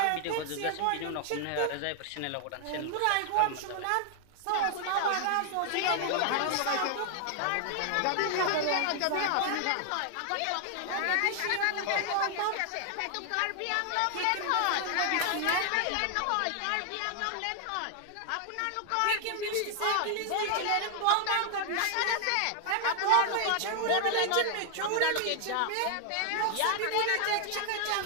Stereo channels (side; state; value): both; different; correlation 0.00